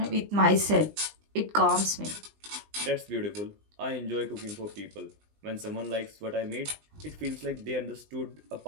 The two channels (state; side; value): late; left; 20 ms